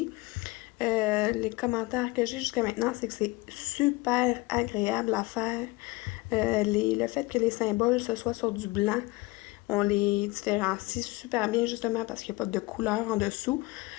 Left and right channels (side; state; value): right; quieter; 22.1 dB